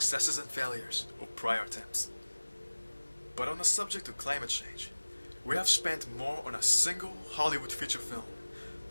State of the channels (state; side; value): inverted; both; correlation -1.00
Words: and failures of prior attempts. But on the subject of climate change, we have spent more on a single Hollywood feature film